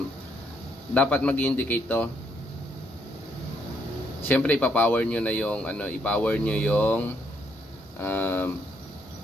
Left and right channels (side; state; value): both; normal; correlation 0.73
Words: dapat mag-indicate to. Siyempre, ipa-power nyo na yung, i-power nyo yung,